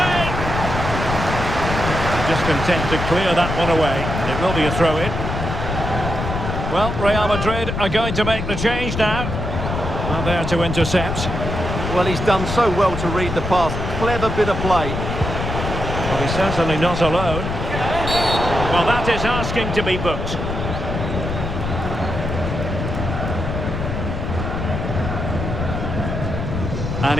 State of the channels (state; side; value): noise; left; rumble, 4 dB below the sound